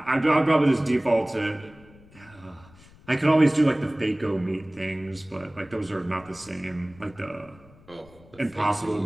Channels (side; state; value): left; noise; rumble, 25 dB below the sound